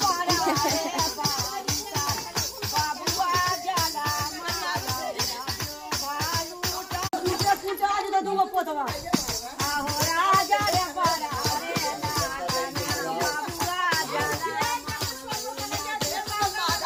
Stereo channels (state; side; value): identical; both; correlation 1.00